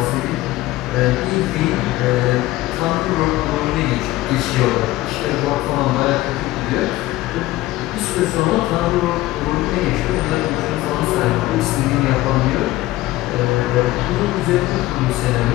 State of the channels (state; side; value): quieter; right; 17.1 dB